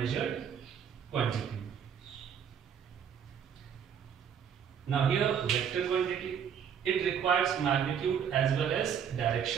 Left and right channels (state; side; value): quieter; left; 8.0 dB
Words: quantity. Now here vector quantity, it requires magnitude as well as